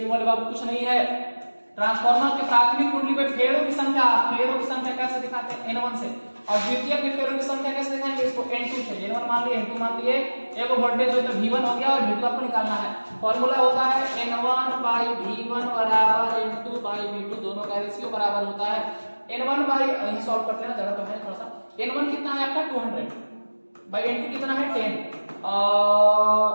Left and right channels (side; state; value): both; inverted; correlation -1.00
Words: वाले बाबू कुछ नहीं है। ट्रांसफार्मर के प्राथमिक कुंडली में फेरों की संख्या कैसे दिखाते हैं, N1 से, और द्वितीयक में फेरों की संख्या कैसे दिखाएंगे, इसको N2 से। N1 मान लिए, N2 मान लिए, एक वोल्टेज हो तो V1 हो गया और V2 आपको निकालना है। फॉर्मूला होता है N1/V1 बराबर N2/V2, दोनों का रेशियो बराबर होता है N1 यही सॉल्व करते हैं, जगह तो है थोड़ा सा। N1 कितना है आपका 200/N2 कितना है 10,